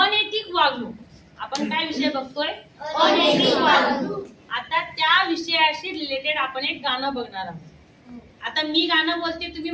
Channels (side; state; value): both; identical; correlation 1.00